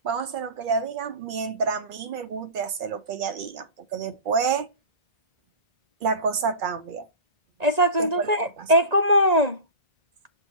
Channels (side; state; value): left; late; 2.3 ms